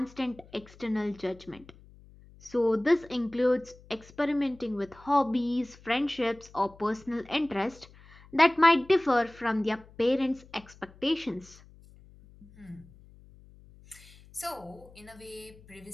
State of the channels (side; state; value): left; noise; hum, 23 dB below the sound